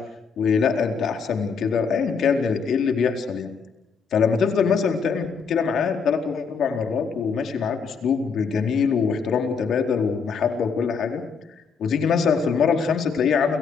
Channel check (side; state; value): right; quieter; 5.7 dB